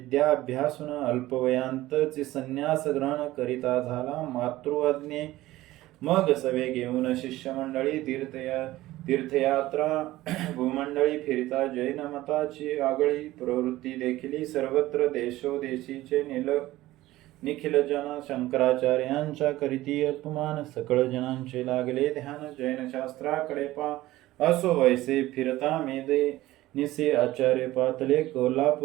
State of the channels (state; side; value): quieter; left; 16.7 dB